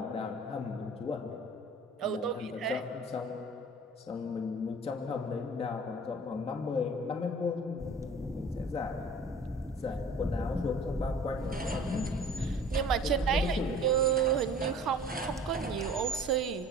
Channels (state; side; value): normal; both; correlation 0.46